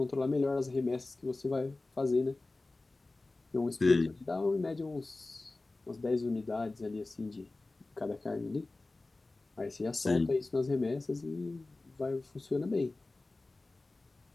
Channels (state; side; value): quieter; right; 3.2 dB